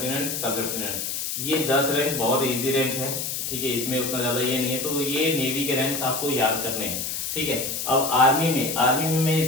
सब लेफ्टिनेंट, ये 10 रैंक बहुत इजी रैंक है। ठीक है, इसमें उतना ज्यादा ये नहीं है, तो ये नेवी के रैंक्स आपको याद करने हैं। ठीक है, अब आर्मी में मैं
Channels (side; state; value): left; noise; hiss, 3 dB below the sound